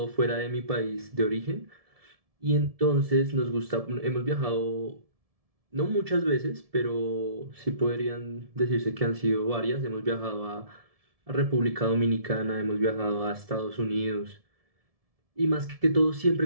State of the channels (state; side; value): late; left; 1.7 ms